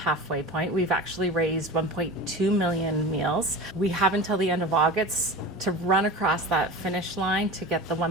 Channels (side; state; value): both; normal; correlation 0.31